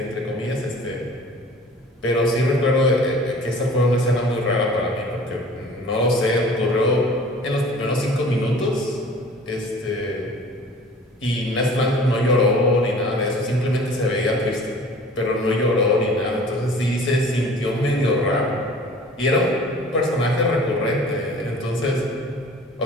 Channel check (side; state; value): both; normal; correlation 0.47